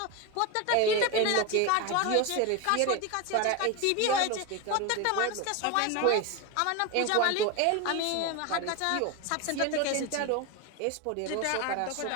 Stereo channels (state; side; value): different; both; correlation 0.03